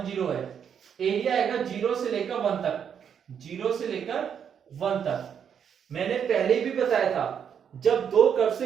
0 है, एरिया आएगा 0 से लेकर 1 तक, 0 से लेकर 1 तक। मैंने पहले भी बताया था, जब दो कर्व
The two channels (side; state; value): left; quieter; 7.9 dB